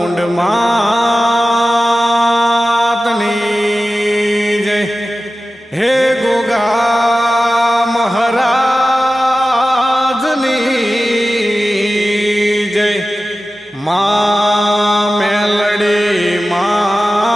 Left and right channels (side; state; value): both; normal; correlation 0.94